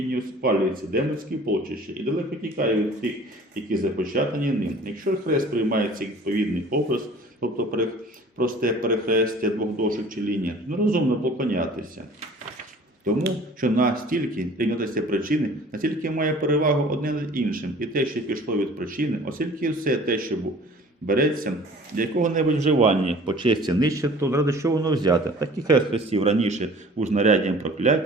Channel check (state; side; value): normal; both; correlation 0.48